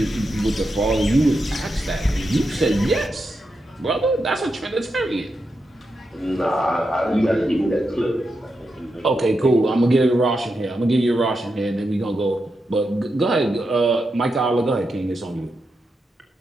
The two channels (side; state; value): both; normal; correlation 0.86